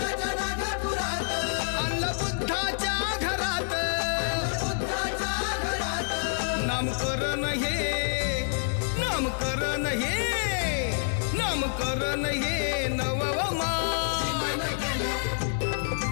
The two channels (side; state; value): right; silent; 60 dB below the other